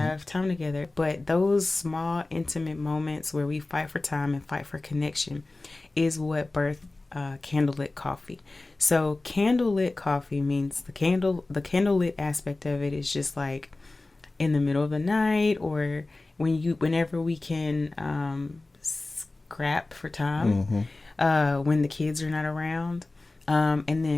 time together. But those small, intimate moments where we fight for time and fight for connection is what birthed Candlelit Coffee. So Candlelit Coffee means the candlelit aspect of it is just like in the middle of the night or whenever we can scrap for time when the kids are not around. And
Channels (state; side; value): quieter; right; 3.1 dB